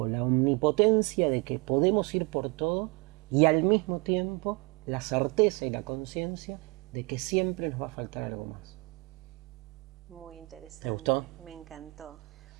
la omnipotencia de que podemos ir por todo y al mismo tiempo la certeza y la conciencia de que siempre nos va a faltar algo más. Muy interesante. ¿Te gustó? Me encantó.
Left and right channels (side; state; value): left; quieter; 27.2 dB